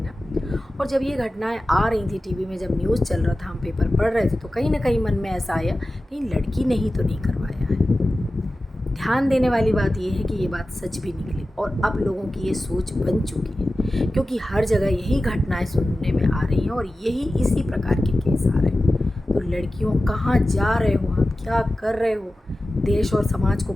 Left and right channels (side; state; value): both; normal; correlation 0.95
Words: और जब ये घटनाएं आ रही थी टीवी में, जब न्यूज़ चल रहा था, हम पेपर पढ़ रहे थे, तो कहीं ना कहीं मन में ऐसा आया कहीं लड़की ने ही तो नहीं करवाया है। ध्यान देने वाली बात यह है कि ये बात सच भी निकली और अब लोगों की ये सोच बन चुकी है क्योंकि हर जगह यही घटनाएं सुनने में आ रही हैं और यही इसी प्रकार के केस आ रहे हैं। तो लड़कियों, कहाँ जा रहे हो आप, क्या कर रहे हो, देश और समाज को